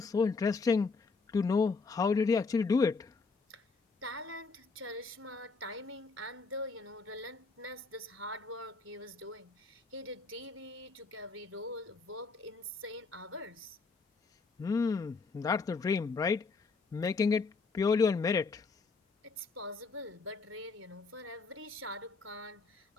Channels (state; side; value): quieter; right; 4.3 dB